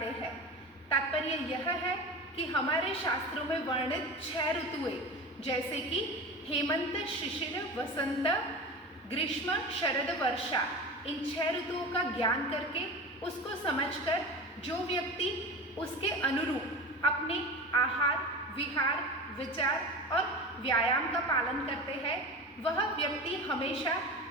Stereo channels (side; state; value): both; normal; correlation 0.31